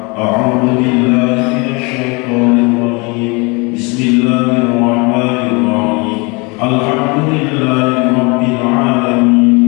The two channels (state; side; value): quieter; right; 28.9 dB